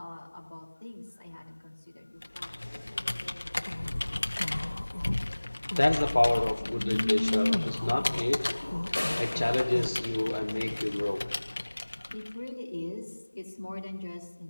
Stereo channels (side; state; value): both; inverted; correlation -1.00